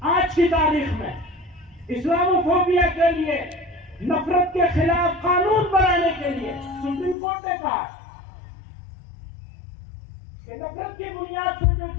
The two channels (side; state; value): right; drops out; at 7.2 s